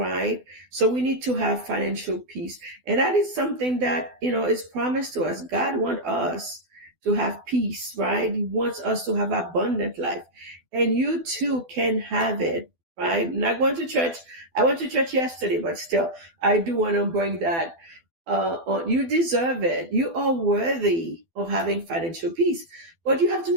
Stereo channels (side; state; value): left; late; 12 ms